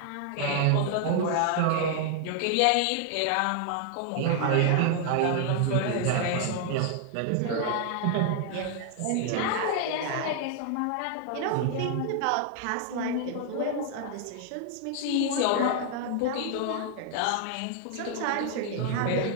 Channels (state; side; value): different; both; correlation 0.00